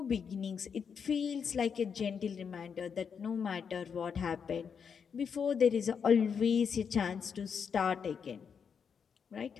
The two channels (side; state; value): right; quieter; 6.7 dB